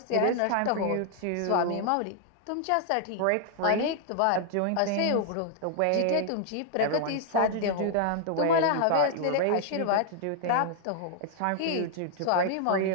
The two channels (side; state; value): both; different; correlation 0.00